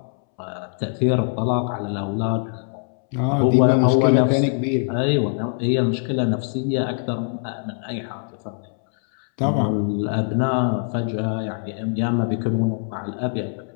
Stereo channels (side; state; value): right; silent; 64 dB below the other